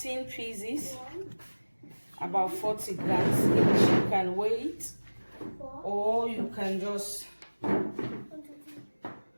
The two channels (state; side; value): inverted; both; correlation -1.00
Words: pieces. About 40 grams each. You can weigh it, or you can just